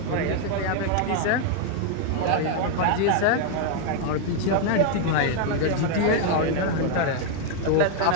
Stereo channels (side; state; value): both; different; correlation 0.00